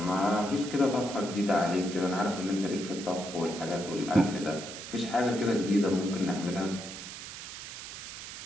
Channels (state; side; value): noise; right; hiss, 10 dB below the sound